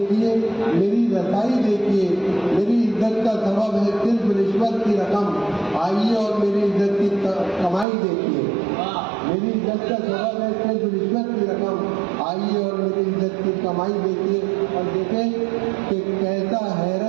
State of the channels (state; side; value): drops out; left; at 7.9 s